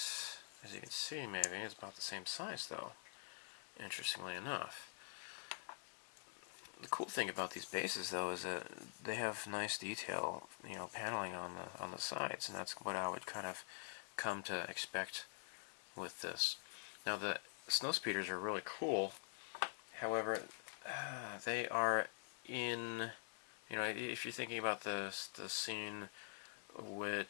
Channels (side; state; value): right; silent; digital silence